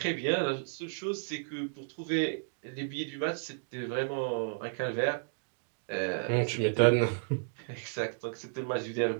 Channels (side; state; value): left; silent; digital silence